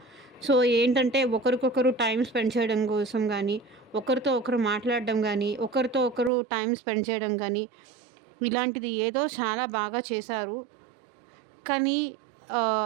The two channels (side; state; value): left; drops out; at 6.3 s